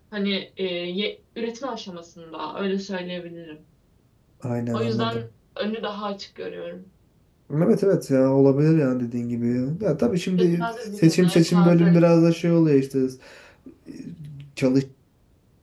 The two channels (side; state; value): both; identical; correlation 1.00